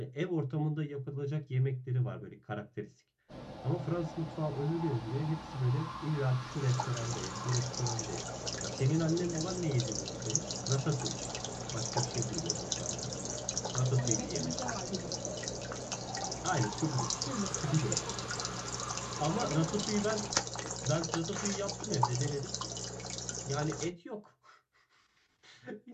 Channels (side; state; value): both; identical; correlation 1.00